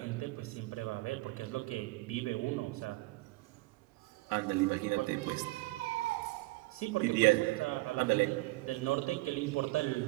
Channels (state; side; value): quieter; left; 21.9 dB